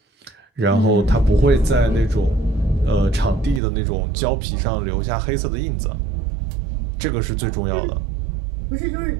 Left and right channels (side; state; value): left; drops out; at 3.6 s